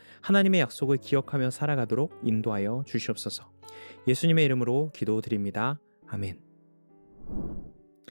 하나님의 약속을 기억하며 살아가도록 인도하여 주시옵소서. 예수님의 이름으로 기도드립니다. 아멘.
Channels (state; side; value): inverted; both; correlation -1.00